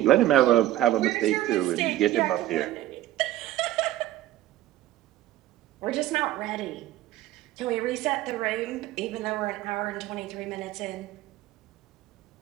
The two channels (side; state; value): left; quieter; 14.3 dB